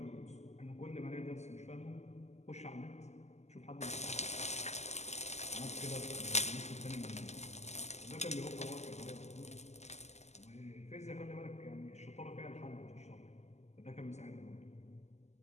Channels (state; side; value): late; right; 0.33 ms